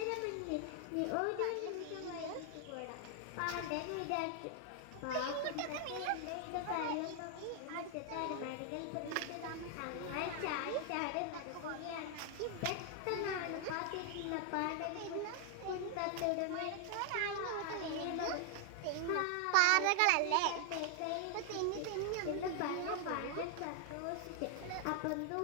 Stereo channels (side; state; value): both; different; correlation 0.00